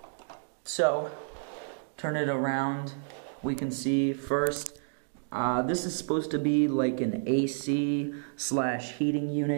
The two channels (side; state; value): left; silent; digital silence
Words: So, turn it around. We can see first, this is supposed to be like an AC/heating